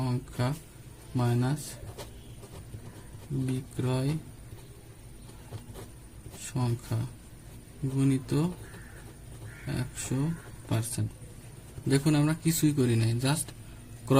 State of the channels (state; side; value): identical; both; correlation 1.00